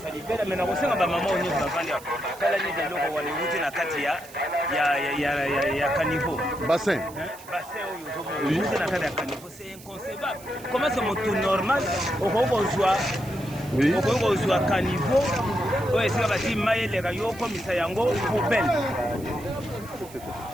ça. Mais on sait que ma maman, on est dans la quand la nuit de l'eau, on va les routes dans Katia, il y a caniveau. Bassin. Oui. C'est inconcevable. Comment c'est mon tour normal? Au revoir. Oui. Au revoir, caniveau. Oui, c'est la team Maël, les rayons, comme ça, yango, poubelle.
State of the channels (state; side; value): noise; right; hiss, 20 dB below the sound